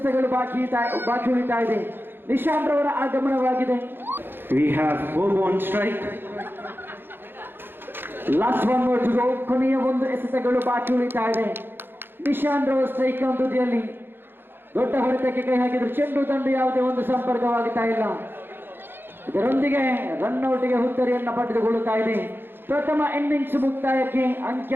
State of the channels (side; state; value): left; late; 0.10 ms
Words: ಬಾಕಿ ಉಳಿತಾ ಇದೆ. ನಿಶಾಂತ್ ರವರ ಆಗಮನವಾಗಿದೆ. we have Bobo on strike. Last 1 more to go. ಕೊನೆಯ 1 ಎಸೆತಗಳು ಬಾಕಿ ಉಳಿತಾ ಇದೆ. ನಿಶಾಂತ್ ರವರ ಸ್ಟ್ರೈಕ್ ತುದಿಯಲ್ಲಿ ದೊಡ್ಡ ಹೊಡೆತಕ್ಕೆ ಕೈ ಹಾಕಿದ್ರು. ಚೆಂಡು ದಂಡು ಯಾವುದೇ ಒಂದು ಸಂಪರ್ಕವಾಗುತ್ತಾ ಇಲ್ಲ. ಇದರೊಂದಿಗೆ ರನ್ಔಟ್ಗೆ ಹುತ್ತರಿಯನ್ನು ಪಡೆದುಕೊಳ್ಳುತ್ತಾ ಇದೆ. ಪ್ರಥಮ ಇನ್ನಿಂಗ್ಸ್ ಮುಕ್ತಾಯಕ್ಕೆ